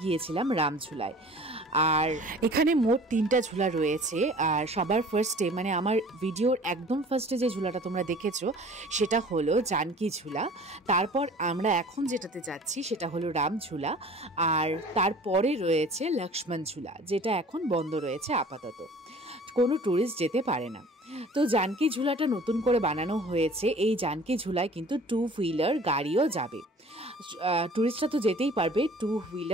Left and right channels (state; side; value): normal; both; correlation 0.47